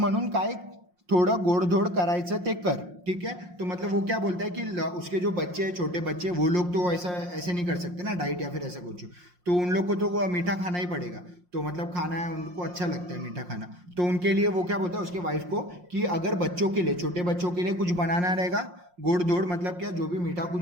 काय थोडं गोडधोड करायचं ते कर, ठीक है। तो मतलब वो क्या बोलता है कि उसके जो बच्चे हैं, छोटे बच्चे, वो लोग तो ऐसे नहीं कर सकते ना डाइट या फिर ऐसा कुछ, तो उन लोग को तो वो मीठा खाना ही पड़ेगा। तो मतलब खाना है, उनको अच्छा लगता है मीठा खाना, तो उनके लिए वो क्या बोलता है उसके वाइफ को कि अगर बच्चों के लिए, छोटे बच्चों के लिए कुछ बनाना रहेगा, गोड़ धोड़ मतलब क्या, जो भी मीठा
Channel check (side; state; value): left; late; 5.6 ms